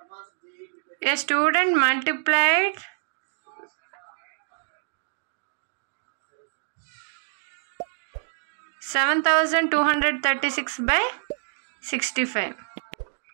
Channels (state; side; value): silent; left; digital silence